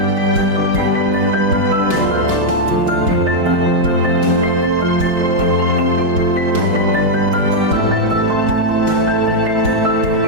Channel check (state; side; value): late; left; 4.6 ms